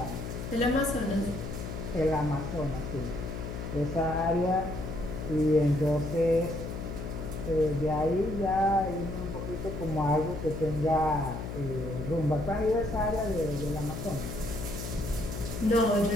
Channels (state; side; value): noise; left; hum, 6 dB below the sound